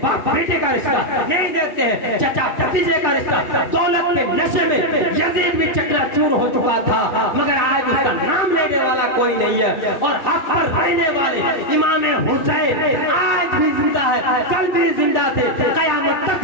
باپ بیٹے کا رشتہ, نہیں دیکھتے ہیں چچا بھتیجے کا رشتہ. دولت کے نشے میں یزید بھی چکنا چور ہو چکا تھا مگر آج اس کا نام لینے والا کوئی نہیں ہے. اور حق پر رہنے والے امام حسین آج بھی زندہ ہے, کل بھی زندہ تھے, قیامت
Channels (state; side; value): late; right; 2.3 ms